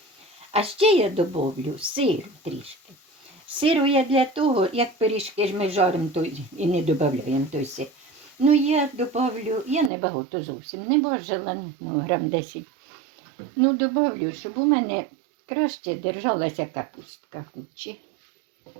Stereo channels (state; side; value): drops out; left; at 9.9 s